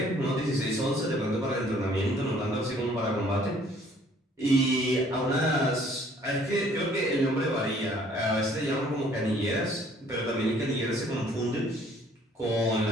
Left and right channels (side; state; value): both; normal; correlation 0.59